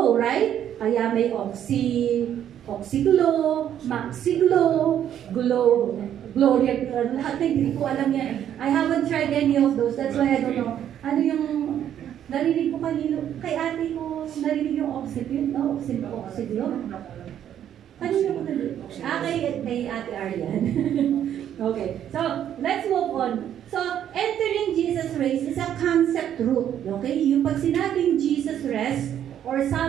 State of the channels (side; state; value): left; quieter; 10.2 dB